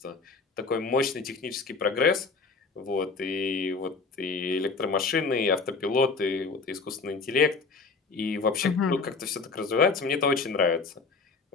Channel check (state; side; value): quieter; right; 4.4 dB